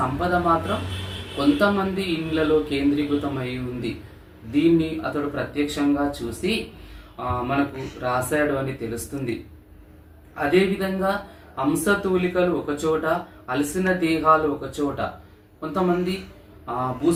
సంపద మాత్రం కొంతమంది ఇండ్లలో కేంద్రీకృతమై ఉంది. దీన్ని అతడు ప్రత్యక్షంగా చూసి మనకు రాశాడు అని తెలుస్తుంది. అదేవిధంగా హంసతూలికలు ఒకచోట, అలసిన దేహాలు ఒకచోట. కొంతమంది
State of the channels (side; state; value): both; identical; correlation 1.00